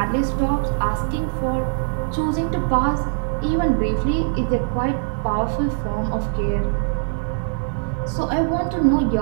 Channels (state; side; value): silent; left; 61 dB below the other